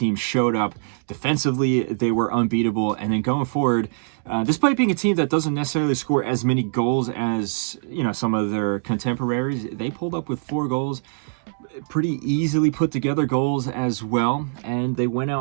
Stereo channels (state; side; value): silent; left; digital silence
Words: showed up. Defensively, they were unbeatable. And then going forward, despite being a team that doesn't necessarily score as many goals as, some of their contemporaries, they pulled up with 4 goals. Pretty easily put together goals as well, and they went